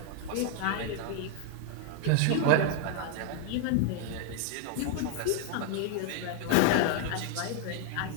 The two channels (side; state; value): both; different; correlation 0.00